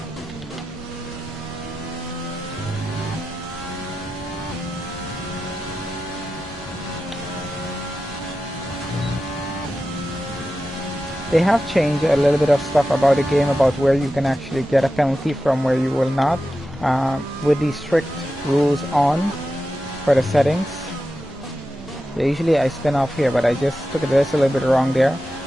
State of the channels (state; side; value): normal; both; correlation 0.91